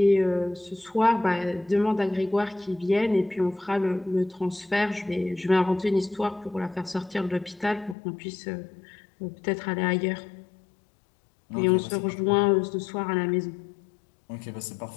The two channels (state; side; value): drops out; right; at 8.0 s